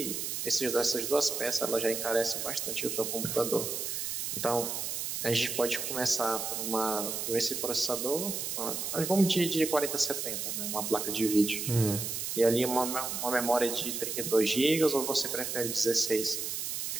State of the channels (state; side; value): noise; right; hiss, 3 dB below the sound